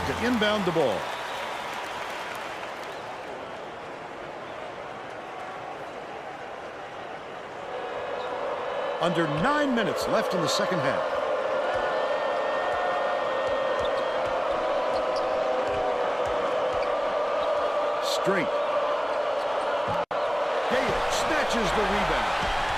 to inbound the ball. Under 9 minutes left in the second half. Straight. Gale snatches the rebound.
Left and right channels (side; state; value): both; identical; correlation 1.00